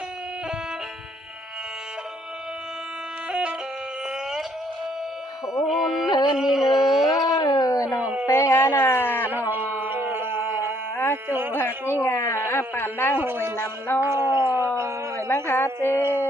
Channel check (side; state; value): both; normal; correlation 0.66